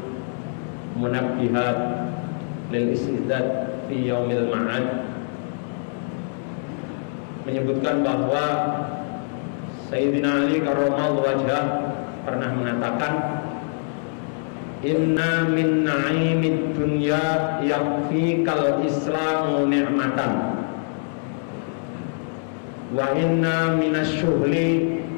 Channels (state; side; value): silent; right; digital silence